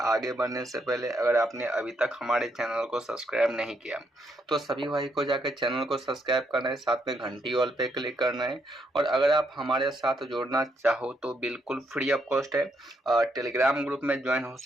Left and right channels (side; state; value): both; normal; correlation 0.76